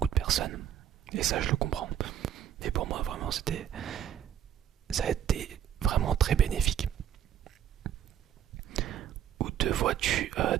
de personnes, et ça je le comprends. Mais pour moi, vraiment, ça a été vraiment très bénéfique. Où te vois-tu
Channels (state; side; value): quieter; left; 10.2 dB